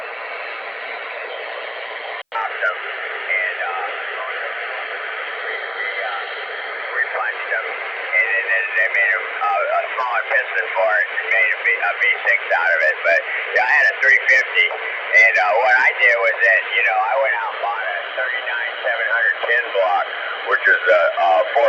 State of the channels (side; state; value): both; identical; correlation 1.00